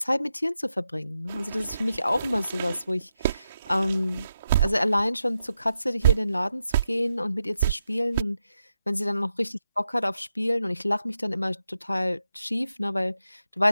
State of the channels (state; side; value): inverted; both; correlation -0.86